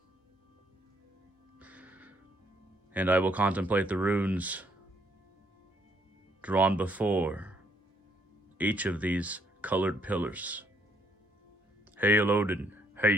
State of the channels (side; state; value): both; normal; correlation 0.69